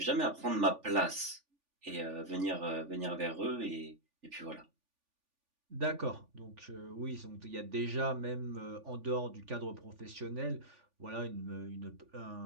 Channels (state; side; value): late; left; 3.5 ms